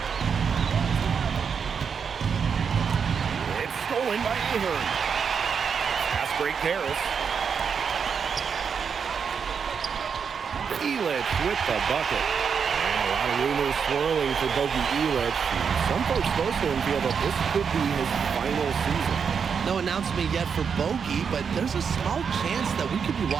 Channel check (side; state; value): left; quieter; 6.5 dB